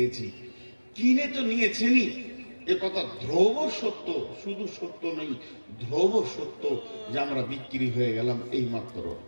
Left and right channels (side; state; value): both; inverted; correlation -1.00